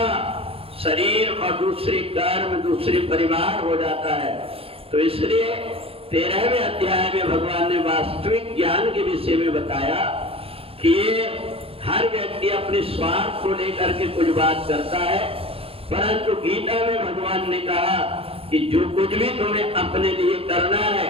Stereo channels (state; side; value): late; left; 0.27 ms